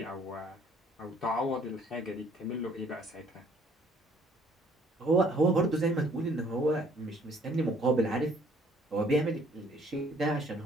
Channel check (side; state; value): both; normal; correlation 0.60